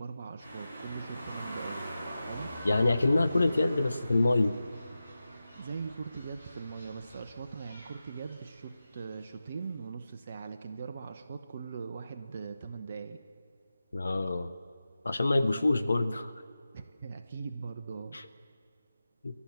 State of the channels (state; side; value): inverted; both; correlation -0.93